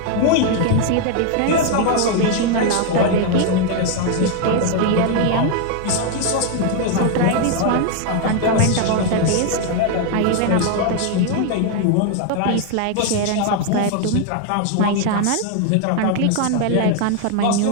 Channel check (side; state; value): both; different; correlation 0.00